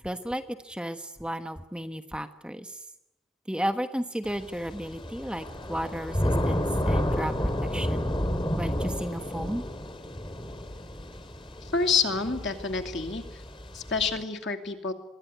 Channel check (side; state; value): both; normal; correlation 0.75